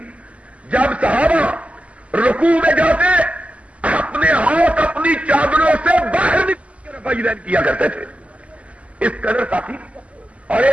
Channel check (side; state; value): left; late; 0.064 ms